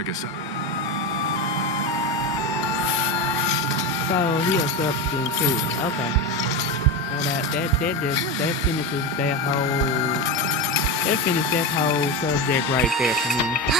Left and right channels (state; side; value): normal; both; correlation 0.18